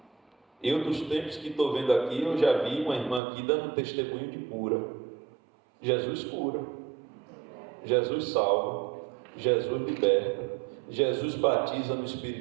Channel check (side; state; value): left; drops out; at 3.2 s